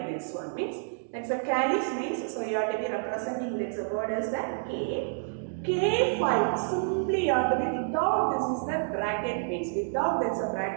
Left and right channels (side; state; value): left; silent; digital silence